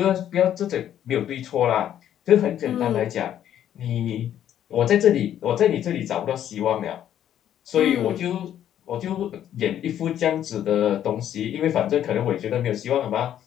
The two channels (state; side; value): quieter; right; 10.7 dB